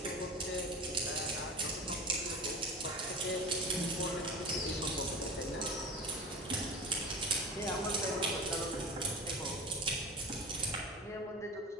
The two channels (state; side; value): normal; both; correlation 0.32